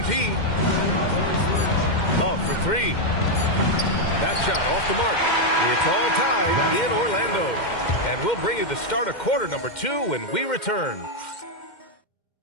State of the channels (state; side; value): late; right; 2.1 ms